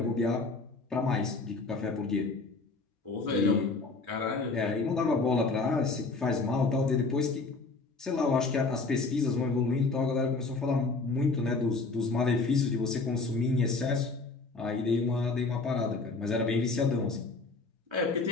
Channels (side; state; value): right; quieter; 3.8 dB